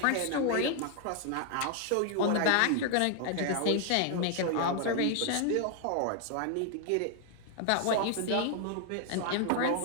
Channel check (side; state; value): both; different; correlation 0.00